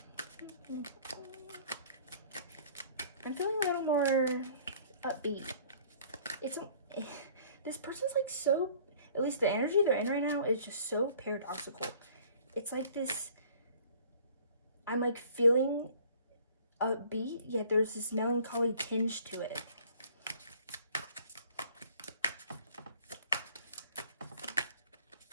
I'm feeling a little more upbeat. This person's like so, at least the energy they're in right now is just so paradoxical. It's like this, I'm like feeling upbeat, yet there's this melancholy tinge to it.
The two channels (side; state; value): both; inverted; correlation -0.53